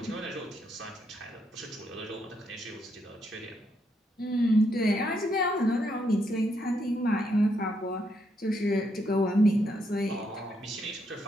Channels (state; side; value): normal; both; correlation 0.77